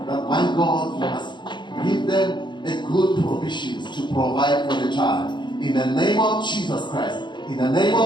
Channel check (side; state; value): right; late; 0.22 ms